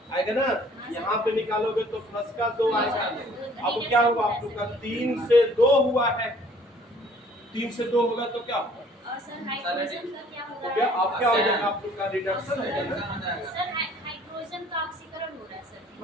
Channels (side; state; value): both; normal; correlation 0.56